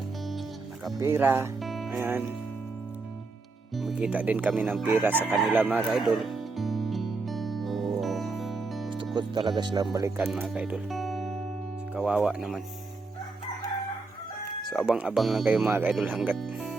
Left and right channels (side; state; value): left; quieter; 3.8 dB